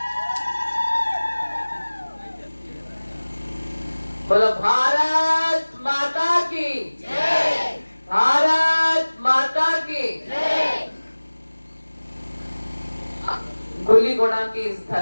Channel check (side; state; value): both; inverted; correlation -1.00